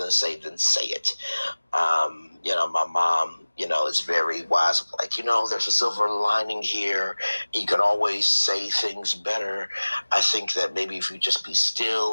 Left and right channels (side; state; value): both; inverted; correlation -1.00